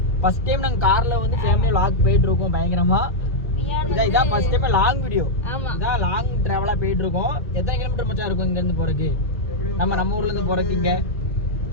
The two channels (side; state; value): both; normal; correlation -0.03